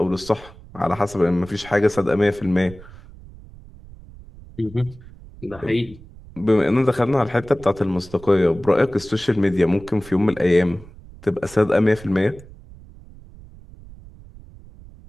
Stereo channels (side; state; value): right; noise; rumble, 19 dB below the sound